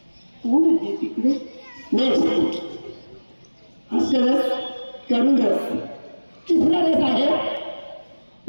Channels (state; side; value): inverted; both; correlation -1.00